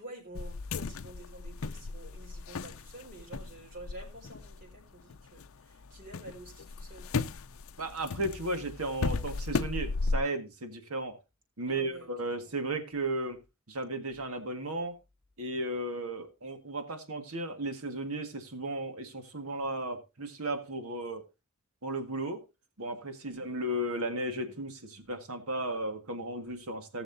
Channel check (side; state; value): both; normal; correlation -0.07